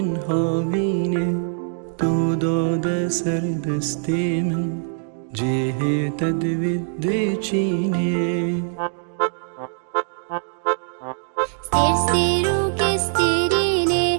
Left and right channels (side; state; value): left; silent; digital silence